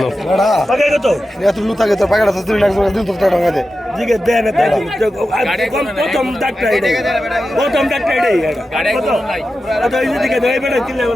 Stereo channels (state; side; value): normal; both; correlation 0.92